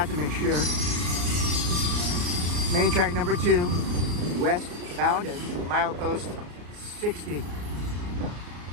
to make sure. Main track number 2, westbound at milepost 60.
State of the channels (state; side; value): late; left; 34 ms